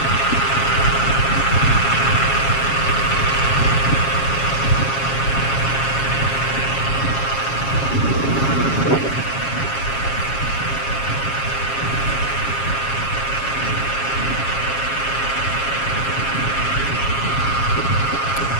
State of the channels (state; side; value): late; right; 7.4 ms